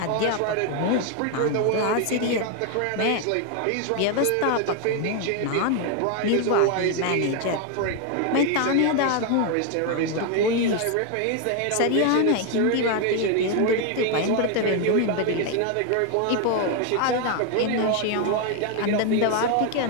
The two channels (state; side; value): different; both; correlation 0.01